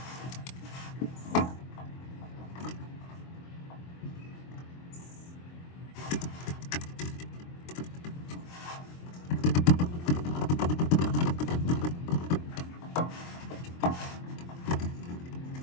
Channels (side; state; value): right; late; 23 ms